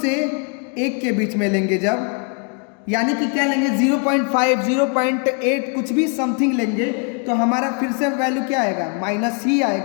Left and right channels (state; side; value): quieter; right; 38.7 dB